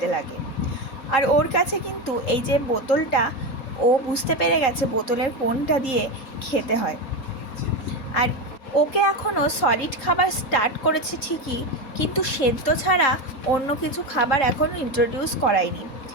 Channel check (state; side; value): late; right; 3.8 ms